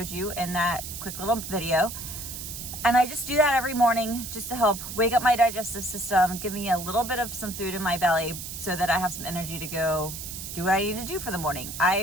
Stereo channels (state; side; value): noise; right; hiss, 8 dB below the sound